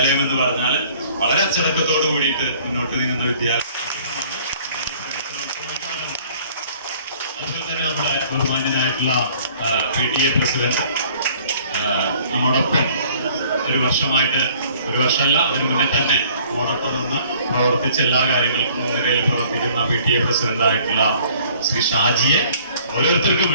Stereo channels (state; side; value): inverted; both; correlation -0.55